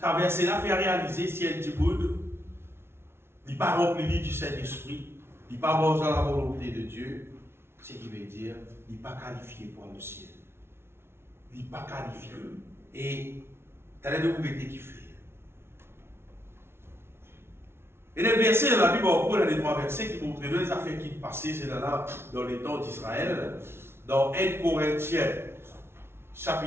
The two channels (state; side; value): late; left; 0.12 ms